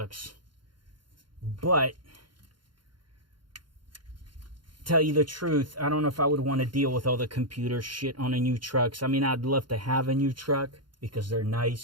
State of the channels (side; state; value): left; late; 0.72 ms